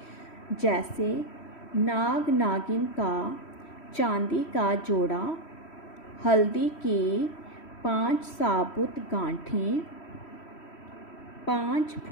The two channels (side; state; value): right; late; 3.1 ms